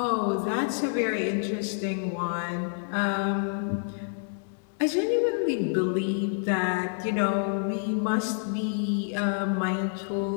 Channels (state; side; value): silent; right; digital silence